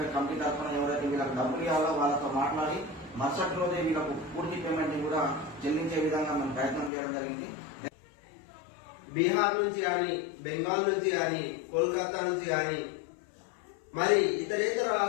కమిటీ తరఫున ఎవరైతే వీళ్ళకి డబ్బులు ఇవ్వాలో వాళ్ళతో మాట్లాడి మరుసటి రోజే వీళ్ళకు పూర్తి పేమెంట్ కూడా చెల్లించే విధంగా మేము ప్రయత్నం చేయడం జరిగింది. బీహార్ నుంచి కానీ, బెంగాల్ నుంచి కానీ, కోల్కతా నుంచి కానీ, మరి ఇతరేతర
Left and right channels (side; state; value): right; drops out; at 6.9 s